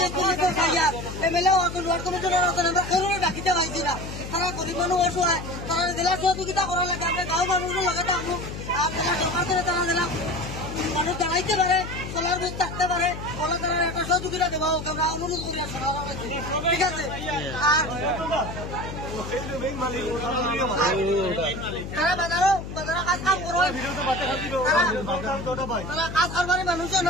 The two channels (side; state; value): left; noise; hum, 8 dB below the sound